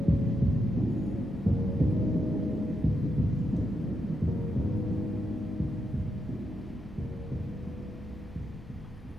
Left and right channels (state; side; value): normal; both; correlation 0.83